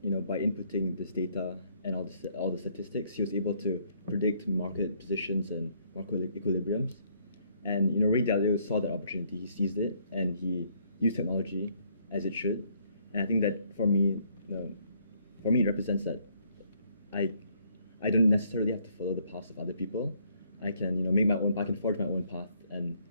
by inputting this data and all the statistics, he was able to predict market positions and market equilibriums. And Ray Dalio saw that opportunity, he seized it, and he used technology as it should. And I think that for me, it represents that I don't necessarily have to follow the paths of other people. I can make my own. I can forge my own path, and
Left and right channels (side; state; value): both; inverted; correlation -0.67